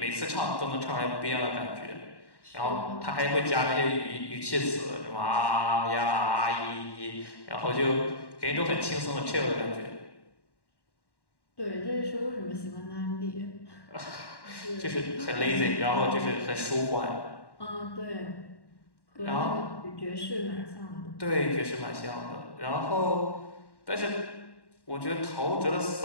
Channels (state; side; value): late; right; 1.1 ms